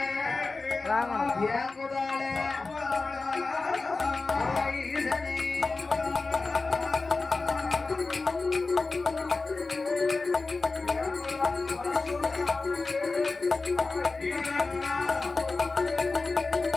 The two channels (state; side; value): quieter; right; 3.8 dB